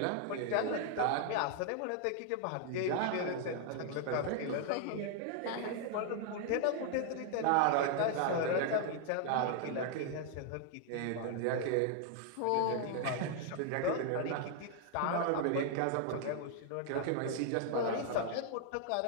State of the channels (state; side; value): different; both; correlation 0.00